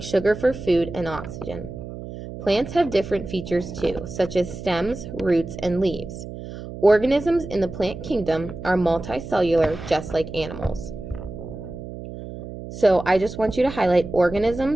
sugar for food and oxygen. Plants have different features too, such as stems, roots, and leaves. Organisms in the plant kingdom are multicellular, just like animals. So I just want you to highlight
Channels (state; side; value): noise; right; hum, 11 dB below the sound